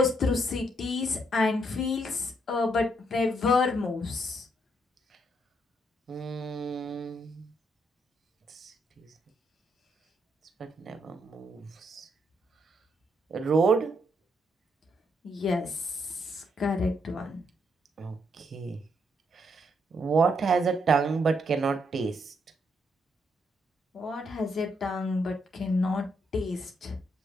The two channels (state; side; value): normal; both; correlation 0.75